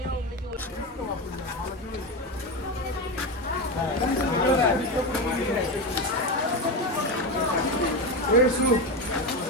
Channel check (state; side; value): normal; both; correlation 0.17